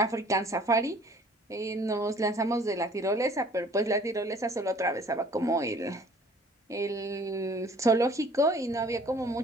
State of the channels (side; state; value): both; normal; correlation 0.53